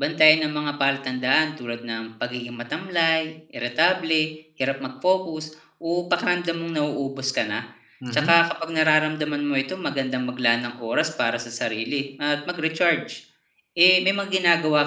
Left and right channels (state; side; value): identical; both; correlation 1.00